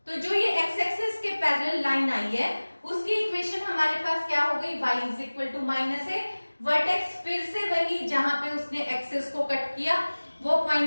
तो जो ये x एक्सिस के पैरेलल लाइन आई है उसकी इक्वेशन हमारे पास क्या हो गई, y is equal to -a। Vertex फिर से वही जहां पे उसने एक्सिस को कट किया वो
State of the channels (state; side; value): inverted; both; correlation -1.00